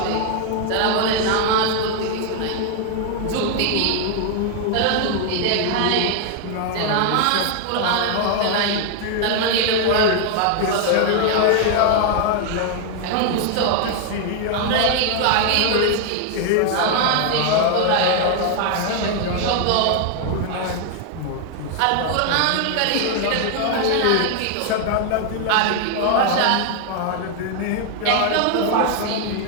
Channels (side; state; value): both; different; correlation 0.00